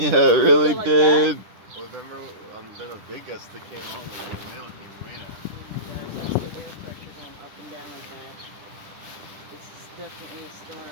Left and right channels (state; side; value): late; left; 10 ms